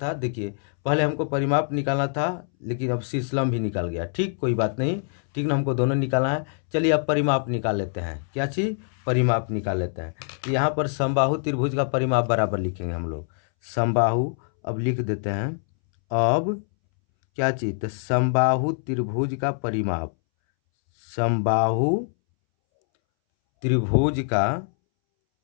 देखिए पहले हमको परिमाप निकालना था लेकिन अब शीर्ष लंब भी निकाल गया। ठीक, कोई बात नहीं, ठीक ना, हमको दोनों निकालना है। चलिए अब परिमाप निकाल लेते हैं, क्या चीज़, परिमाप निकाल लेते हैं। तो यहाँ पर समबाहु त्रिभुज का परिमाप बराबर लिखेंगे हम लोग, समबाहु अब लिख देते हैं। अब क्या चीज़, तो समबाहु त्रिभुज का परिमाप, समबाहु त्रिभुज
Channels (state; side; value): silent; right; 62 dB below the other